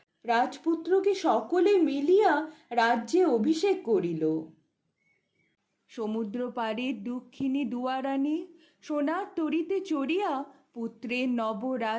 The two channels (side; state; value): both; identical; correlation 1.00